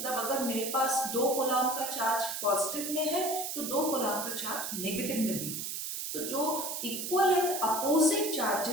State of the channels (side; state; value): right; noise; hiss, 4 dB below the sound